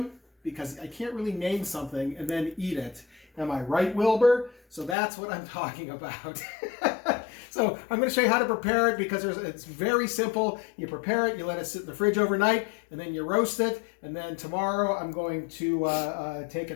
because I can't really name something and then eat it. Am I right, Wilbur? So that's what I'm talking about. So I'm going to show you how to prepare it because it's very simple. You prepare it, you let it sit in the fridge overnight, and then you roast it. And then tomorrow I'm going to take it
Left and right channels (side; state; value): right; drops out; at 5.0 s